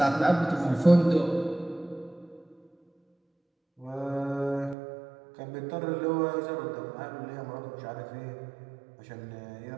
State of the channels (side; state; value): left; drops out; at 4.8 s